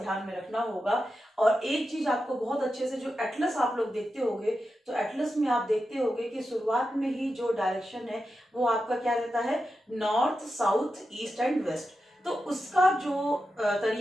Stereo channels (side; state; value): both; normal; correlation 0.89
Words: में रखना होगा। और एक चीज आपको बहुत अच्छे से, जो एटलस आप लोग देखते होंगे, तो एटलस में आप देखते होंगे कि शुरुआत में ही जो डायरेक्शन है वो आपका क्या रहता है? North, south, east and west. तो उसका जो